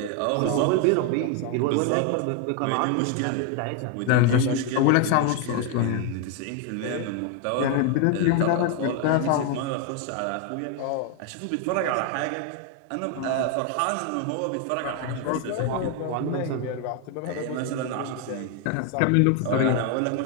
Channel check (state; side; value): different; both; correlation 0.01